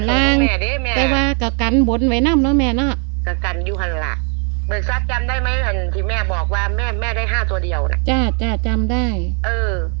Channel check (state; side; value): quieter; left; 38.6 dB